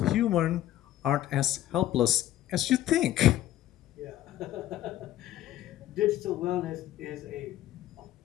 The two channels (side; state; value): right; quieter; 13.3 dB